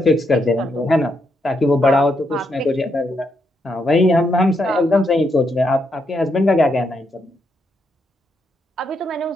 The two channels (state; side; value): normal; both; correlation 0.79